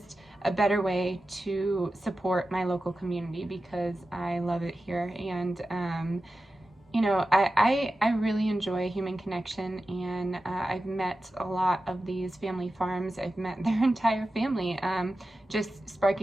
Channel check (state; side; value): normal; both; correlation 0.93